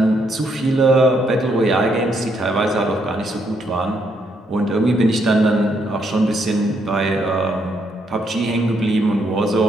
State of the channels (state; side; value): normal; both; correlation 0.74